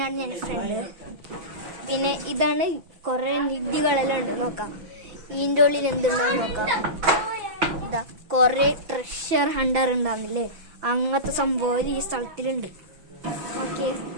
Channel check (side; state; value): left; late; 6.0 ms